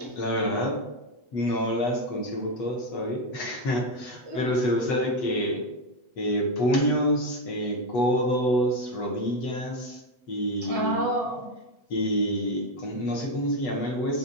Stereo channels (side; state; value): right; late; 8.1 ms